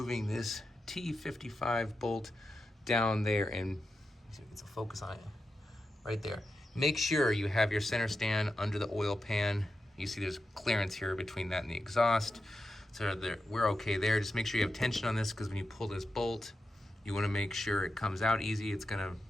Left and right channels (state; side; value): normal; both; correlation 0.89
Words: this T55 bolt down there, and it's a focus on it right there. Make sure you have your center stand under the oil pan. You see there's clearance here between that and the exhaust. So we're okay there. Just make sure you have tension on this, because when you pull this bolt, you want to make sure it comes out easy. It's going to